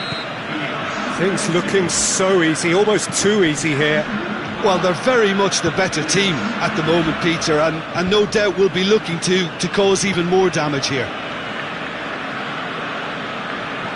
Things looking so easy, almost too easy here. Well, they're very much the better team at the moment, Peter, and no doubt will be looking to cause even more damage here.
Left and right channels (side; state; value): both; identical; correlation 1.00